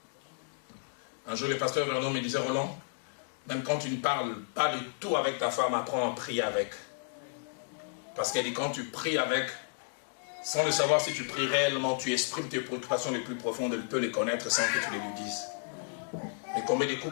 Un jour, le pasteur Vernon me disait, Roland, même quand tu ne parles pas de tout avec ta femme, apprends à prier avec. Parce qu'elle dit, quand tu pries avec, sans le savoir si tu pries réellement, tu exprimes tes préoccupations les plus profondes, elle peut les connaître sans que tu les lui dises. Mais combien de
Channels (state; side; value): silent; right; digital silence